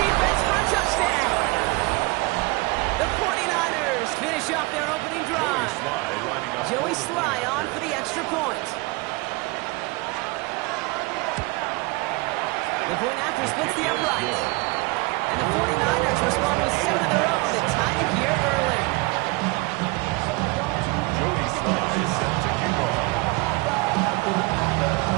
defense for a touchdown. The 49ers finish up their opening drive. Joey Sly on for the extra point. The point after splits the upright. And the 49ers respond with 7 of their own to tie it here early. Joey Sly is set to kick off. We've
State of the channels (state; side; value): quieter; left; 24.9 dB